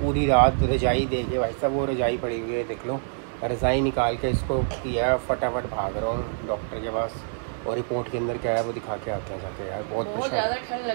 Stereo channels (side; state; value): left; silent; 61 dB below the other